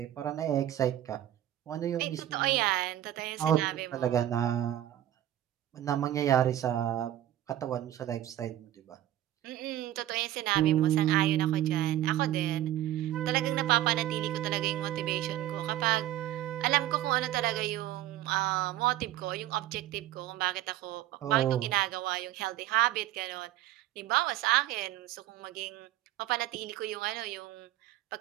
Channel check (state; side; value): quieter; left; 13.3 dB